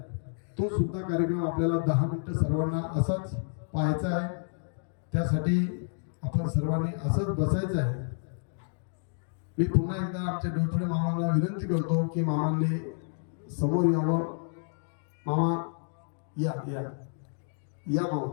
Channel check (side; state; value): right; silent; digital silence